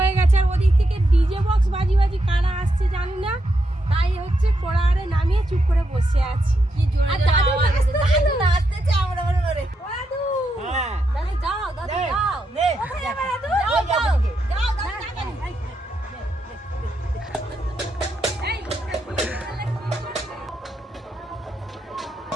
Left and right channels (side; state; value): both; normal; correlation 0.82